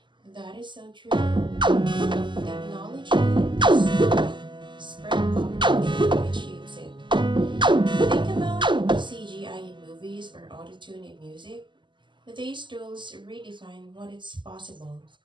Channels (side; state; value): left; late; 0.23 ms